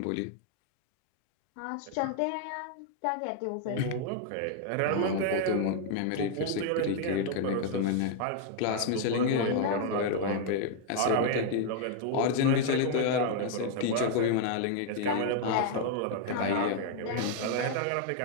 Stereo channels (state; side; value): different; both; correlation 0.00